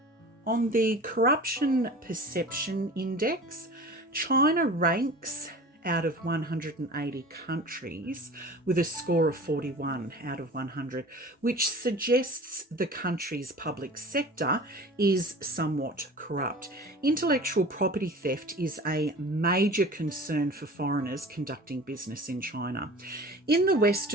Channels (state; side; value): normal; both; correlation 0.40